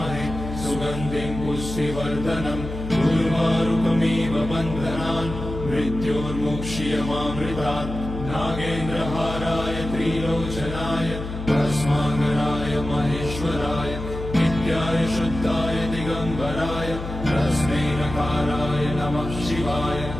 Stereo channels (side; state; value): left; noise; hum, 8 dB below the sound